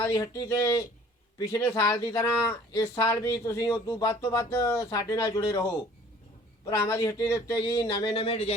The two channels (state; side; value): normal; both; correlation 0.52